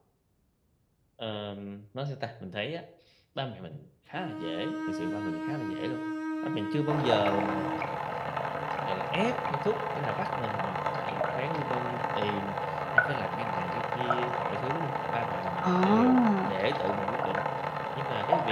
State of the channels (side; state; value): both; identical; correlation 1.00